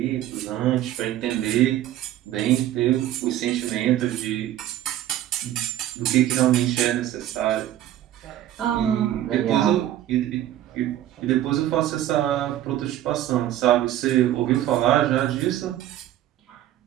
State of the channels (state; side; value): quieter; left; 12.8 dB